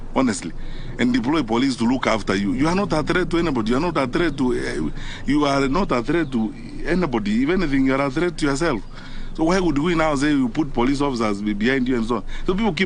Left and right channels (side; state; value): both; identical; correlation 1.00